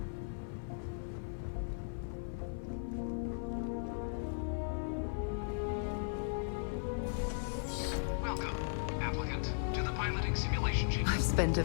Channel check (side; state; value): right; silent; 53 dB below the other